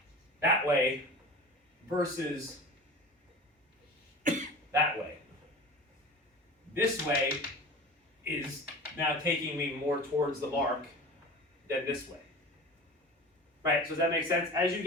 that way versus that way. This way is now taking me more towards the mark than this way. Right, so does that make sense? As you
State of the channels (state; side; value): normal; both; correlation 0.36